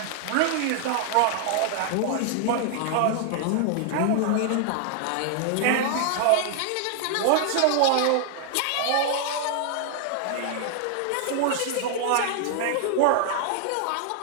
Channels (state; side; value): different; both; correlation 0.00